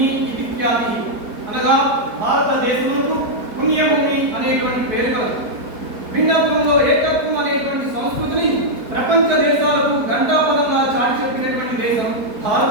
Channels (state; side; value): late; left; 4.6 ms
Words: ఇది ఖ్యాతి, అనగా భారతదేశమునకు పుణ్యభూమి అనేటువంటి పేరు కలదు. భిన్నత్వంలో ఏకత్వం అనేటువంటి సంస్కృతిని ప్రపంచ దేశాలకు గంటాపదంగా చాటి చెప్పినటువంటి దేశం